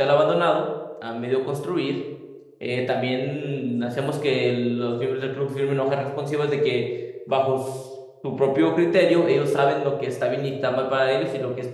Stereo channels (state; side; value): identical; both; correlation 1.00